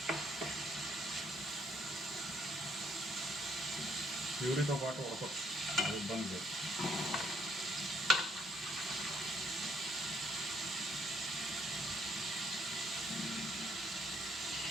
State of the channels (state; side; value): normal; both; correlation 0.67